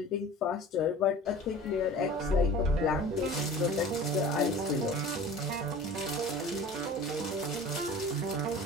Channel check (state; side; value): normal; both; correlation 0.41